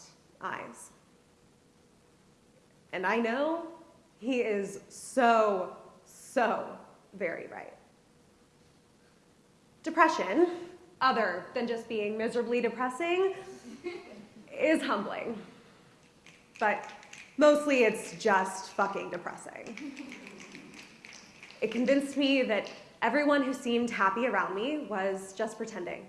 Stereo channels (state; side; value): identical; both; correlation 1.00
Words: eyes. And I know he is so very right. Depression, other than just being miserably depressing, is humbling. But mostly it's just fucking depressing. It convinced me that everyone who seemed happy around me was just pretending,